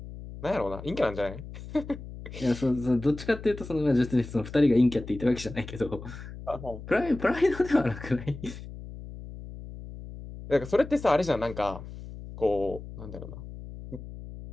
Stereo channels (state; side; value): noise; left; hum, 12 dB below the sound